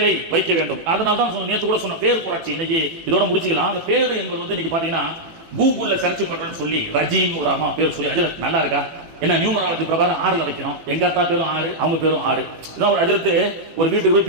வைக்க வேண்டும். அதனால்தான் நேற்று கூட சொன்ன பேர் புரட்சி இன்னைக்கு இதோட முடிச்சுக்கலாம். அந்த பேர் என்பது வந்து இன்னைக்கு பாத்தீங்கன்னா கூகுள்ல சர்ச் பண்றேன்னு சொல்லி ரஜீம் ஒரு அம்மா பேர் சொல்லி, அது நல்லா இருக்கா என்ன, நியூமராலஜி பிரகாரம் 6ல வைக்கணும், எங்க அத்தா பேரும் 6 அவங்க பேரும் 6. இதான் ஒரு அஜரத்து ஒரு வீட்டுக்கு போய்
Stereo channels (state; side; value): late; left; 18 ms